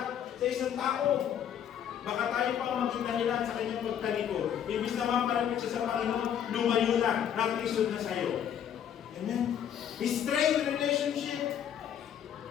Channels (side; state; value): right; quieter; 9.3 dB